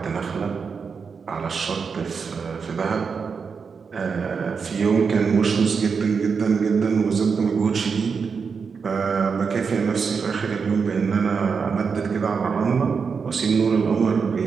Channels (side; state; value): left; quieter; 5.6 dB